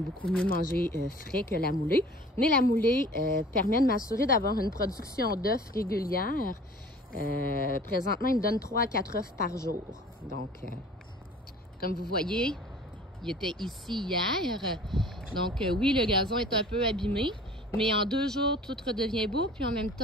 beaucoup mieux manger frais que la moulée. Mais la moulée permet de m'assurer d'avoir une production d'œufs régulière. Présentement, il me donne 3 à 4 œufs par jour. Donc, comme vous voyez, il était ici hier. Donc, oui, le gazon est un peu abîmé. Mais en 2 jours, tout redevient beau. Puis en même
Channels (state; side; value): normal; both; correlation 0.46